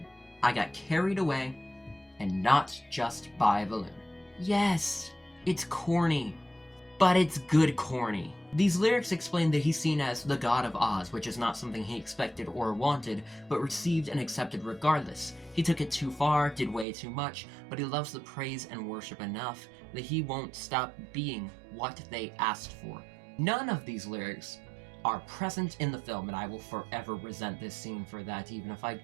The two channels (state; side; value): drops out; left; at 16.9 s